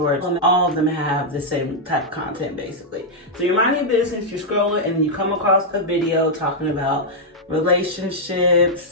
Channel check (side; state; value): both; normal; correlation -0.04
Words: all of them have the same type of content basically. So you're minding your business, you're scrolling, and you come across a video talking about relationships.